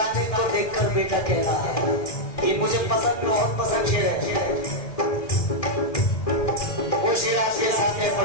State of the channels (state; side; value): late; right; 1.6 ms